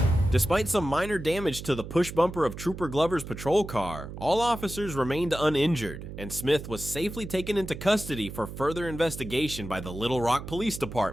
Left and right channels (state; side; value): noise; right; hum, 10 dB below the sound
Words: Despite some minor damage to the push bumper of Trooper Glover's patrol car, all officers remained uninjured, and Smith was safely taken into custody for further investigation by the Little Rock Police